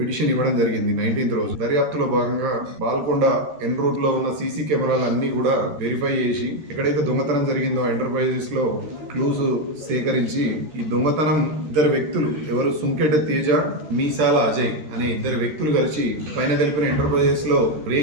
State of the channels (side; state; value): left; late; 13 ms